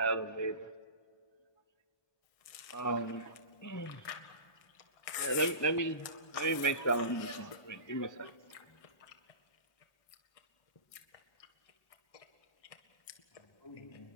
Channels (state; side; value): late; right; 1.6 ms